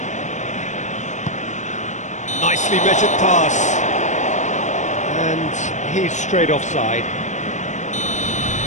Nicely measured pass. And he's straight offside.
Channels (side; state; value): right; late; 0.35 ms